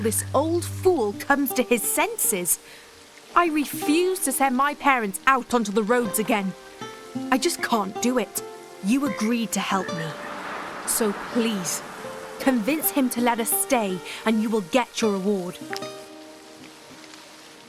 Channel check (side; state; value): both; identical; correlation 1.00